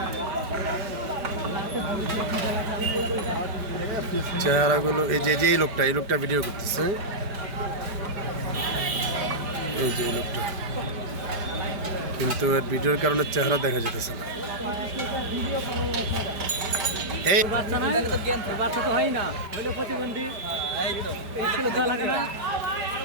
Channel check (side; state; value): left; late; 5.0 ms